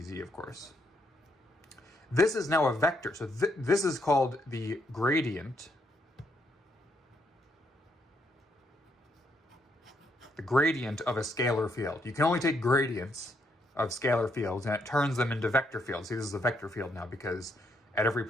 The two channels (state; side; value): normal; both; correlation 0.75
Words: of course. This is now a vector. So this is called the gradient. The gradient of a scalar field. You can only take gradients of scalar fields and it turns them into vector fields. See, this is a vector field now because at every